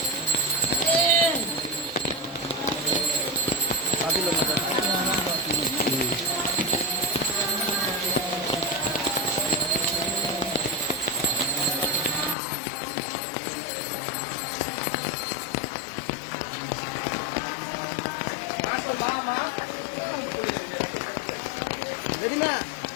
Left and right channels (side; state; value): right; drops out; at 12.4 s